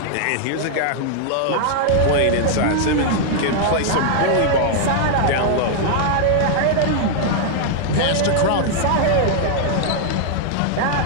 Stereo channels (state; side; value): different; both; correlation -0.01